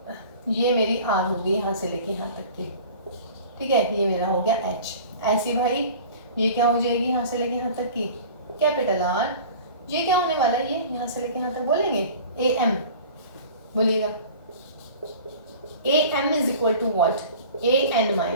ये मेरी r होगी यहाँ से लेके यहाँ तक की, ठीक है, ये मेरा हो गया h, ऐसी भाई ये क्या हो जाएगी यहाँ से लेके यहाँ तक की कैपिटल R, ये क्या होने वाला है, ये यहाँ से लेके यहाँ तक बोलेंगे am, बोलिएगा am is equal to what, an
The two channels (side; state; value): both; inverted; correlation -0.42